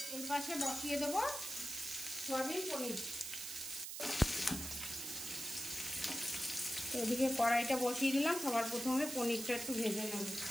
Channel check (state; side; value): noise; right; hiss, 6 dB below the sound